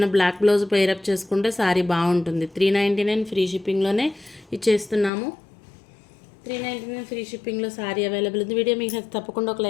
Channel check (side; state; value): right; drops out; at 5.1 s